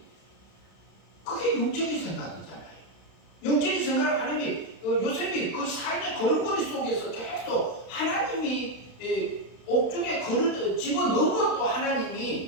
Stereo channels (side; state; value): right; late; 31 ms